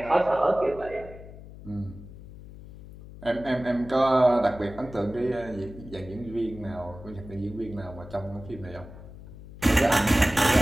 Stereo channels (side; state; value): left; noise; hum, 16 dB below the sound